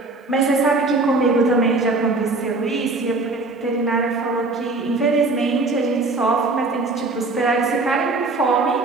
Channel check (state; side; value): quieter; left; 3.4 dB